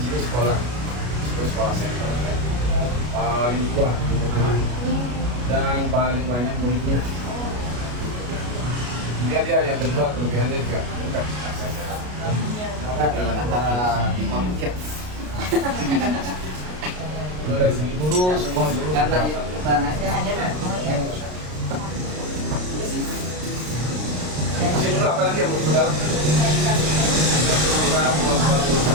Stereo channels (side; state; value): left; late; 33 ms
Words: sini sekolah center ya. Paling tua dan paling banyak muridnya. Kemudian dia yang kedua kelebihannya juga dekat aksesnya. Jalan antara tiap. Dari segi guru semua guru masih dulu apa lagi yang mau dalam?